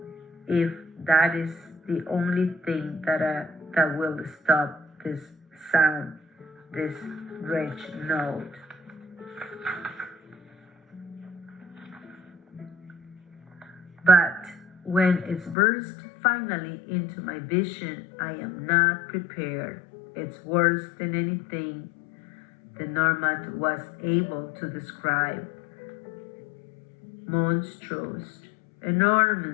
If that is the only thing that will stop this sound, this rich note. But when it burst finally into my vision, I am not prepared. It's worse than anything the Normand was able to describe. Monstrous,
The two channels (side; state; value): right; drops out; at 15.6 s